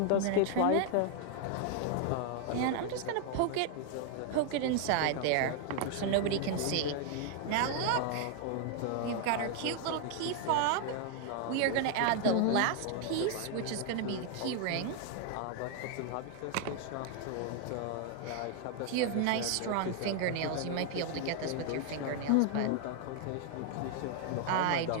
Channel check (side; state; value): both; different; correlation 0.00